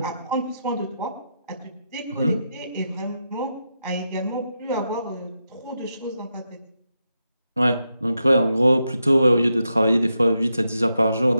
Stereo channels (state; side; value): inverted; both; correlation -0.85